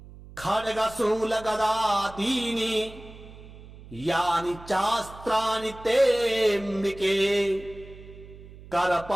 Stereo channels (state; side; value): noise; right; hum, 18 dB below the sound